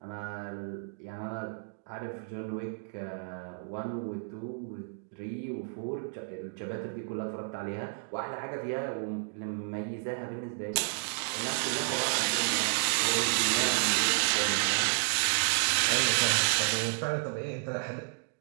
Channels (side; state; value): left; silent; digital silence